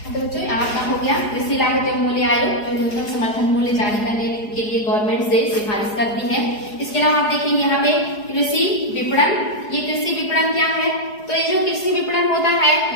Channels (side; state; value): right; late; 4.8 ms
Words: तो बच्चों आपका हो गया कृषि लागत एवं मूल्य आयोग, जो न्यूनतम समर्थन मूल्य जारी करने के लिए गवर्नमेंट से सिफारिश करती है। इसके अलावा आप देखेंगे यहाँ पे कृषि विपणन। ये कृषि विपणन क्या है, तो ये जो कृषि विपणन होता है